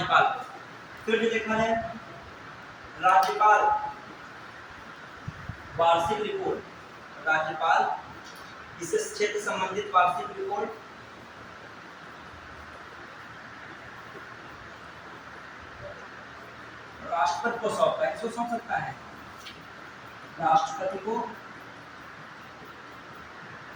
को। फिर जो देखा है राज्यपाल वार्षिक रिपोर्ट, राज्यपाल इस क्षेत्र संबंधित वार्षिक रिपोर्ट राष्ट्रपति को सौंपता है। किसको सौंप सकता है? राष्ट्रपति को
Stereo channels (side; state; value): both; identical; correlation 1.00